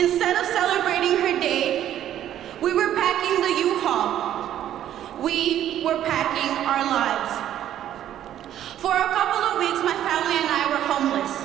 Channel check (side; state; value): left; quieter; 11.4 dB